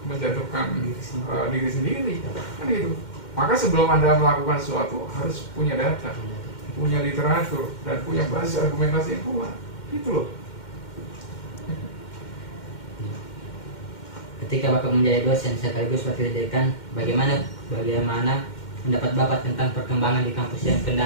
menjatuhkan diri sendiri, kan gitu. Maka sebelum Anda melakukan sesuatu harus punya data, punya literatur, dan punya basis argumentasi yang kuat, gitu loh. Ketika Bapak menjadi dosen sekaligus wakil dekan, bagaimana pendapat Bapak tentang perkembangan di kampus yang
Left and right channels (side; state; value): right; late; 2.1 ms